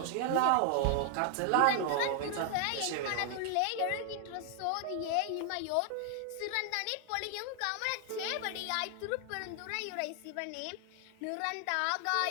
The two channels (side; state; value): both; different; correlation 0.00